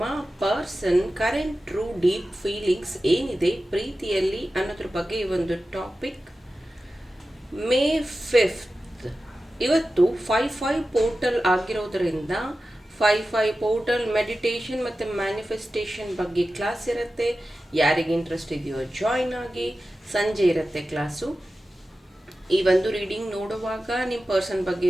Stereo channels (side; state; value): both; normal; correlation 0.94